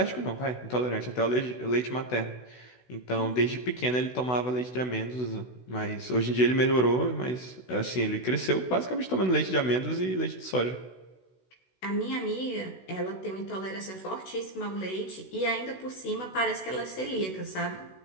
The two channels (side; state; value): right; late; 16 ms